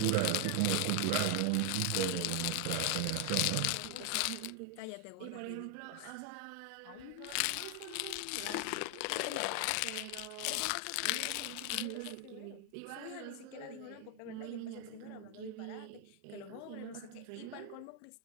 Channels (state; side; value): different; both; correlation 0.01